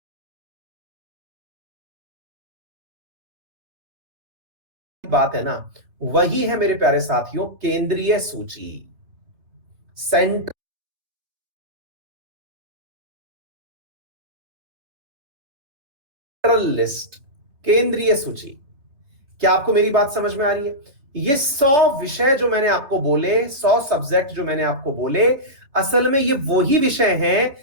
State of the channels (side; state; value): left; late; 3.4 ms